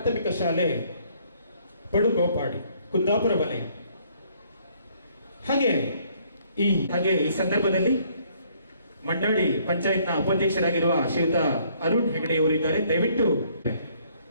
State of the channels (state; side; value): inverted; both; correlation -0.64